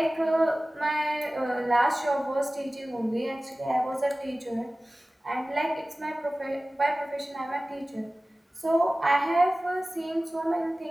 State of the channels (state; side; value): normal; both; correlation 0.97